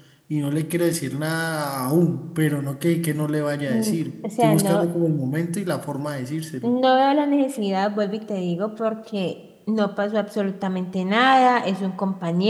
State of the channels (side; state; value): both; identical; correlation 1.00